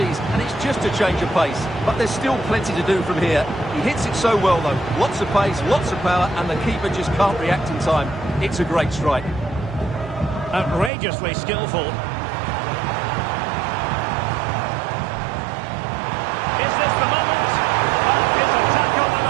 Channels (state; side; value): drops out; left; at 10.9 s